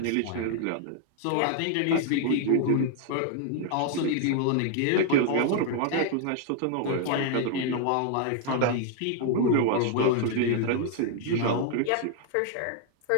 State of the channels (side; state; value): both; different; correlation 0.00